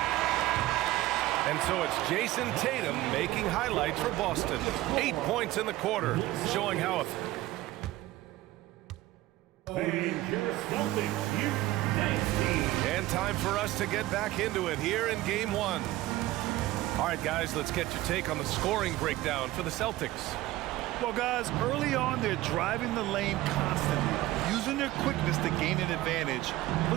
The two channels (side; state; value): left; quieter; 16.8 dB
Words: And so it's Jason Tatum making highlights for Boston. 8 points in the quarter, showing how and time for us to get back into it here in game 1. All right, guys, let's get your take on the scoring breakdown for the Celtics. Well, guys, early on, they're driving the lane constantly, using their quickness to gain an advantage.